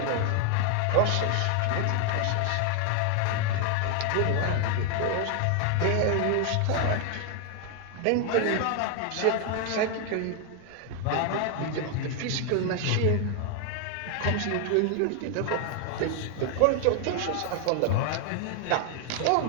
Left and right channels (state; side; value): different; both; correlation 0.00